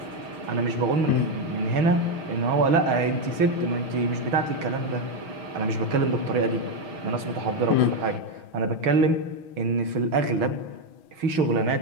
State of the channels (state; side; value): late; left; 6.2 ms